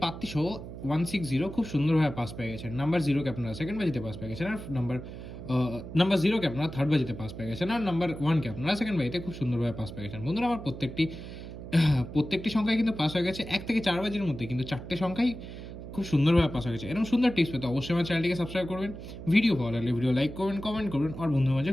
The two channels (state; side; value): noise; right; hum, 11 dB below the sound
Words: পাত্তি সহ 160 খুব সুন্দরভাবে পাস পেয়ে গেছেন। নাম্বার 0কে আপনারা সেকেন্ড বাজিতে পাস পেয়ে গেছেন, আর নাম্বার 0কে আপনারা থার্ড বাজিতে পাস পেয়ে গেছেন, আর নাম্বার 1কে আপনারা সেকেন্ড বাজিতে খুব সুন্দরভাবে পাস পেয়ে গেছেন। বন্ধুরা, আমার প্রত্যেকটি সংখ্যায় কিন্তু পাস হয়ে গেছে 1 থেকে 4 বাজির মধ্যে, কিন্তু 4টে সংখ্যাই খুব সুন্দরভাবে পাস হয়ে গেছে। এরকম সুন্দর টিপস পেতে অবশ্যই আমার চ্যানেলটিকে সাবস্ক্রাইব করবেন, ভিডিও ভালো লাগলে ভিডিও লাইক করবেন, কমেন্ট করবেন, আর বন্ধুদের মাঝে